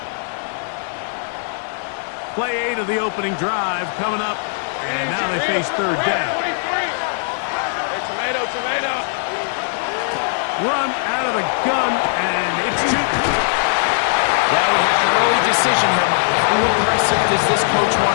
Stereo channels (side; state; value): right; silent; digital silence